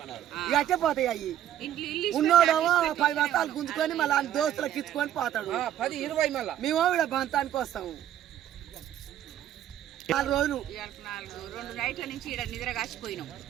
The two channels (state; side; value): quieter; left; 11.4 dB